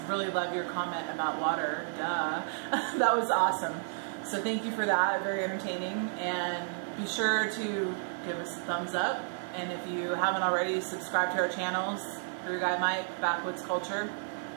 really love your comment about water. Duh. That was awesome. So thank you for that. Very entertaining. And be sure to give us a thumbs up. And if you haven't already, subscribe to our channels. BrewGuyMike, Backwoods Culture.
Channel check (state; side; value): silent; left; digital silence